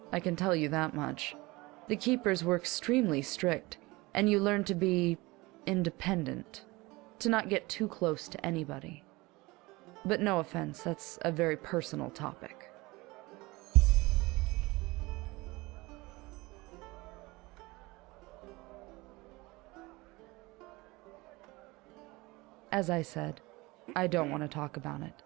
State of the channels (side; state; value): left; quieter; 22.4 dB